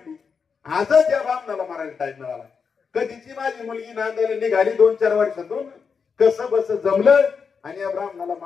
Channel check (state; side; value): quieter; right; 5.8 dB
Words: आजच या बामणाला मारायला टाइम मिळाला. कधीची माझी मुलगी नांदायला निघाली 2-4 वर्षातून, कसं बस जमलं आणि या ब्राह्मणाला